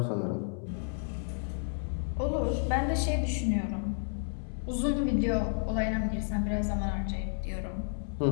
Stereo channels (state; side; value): silent; right; 57 dB below the other